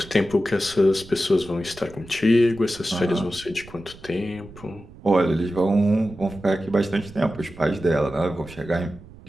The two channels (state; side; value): noise; right; rumble, 19 dB below the sound